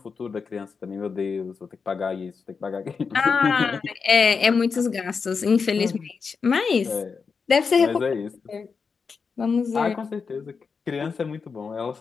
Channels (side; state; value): right; quieter; 5.3 dB